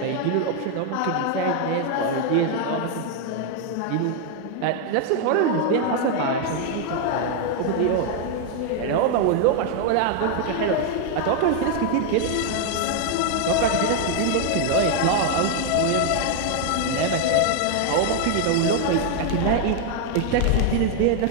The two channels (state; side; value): different; both; correlation 0.00